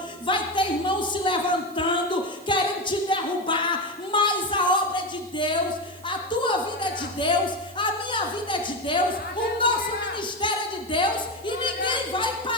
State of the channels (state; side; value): noise; right; hiss, 23 dB below the sound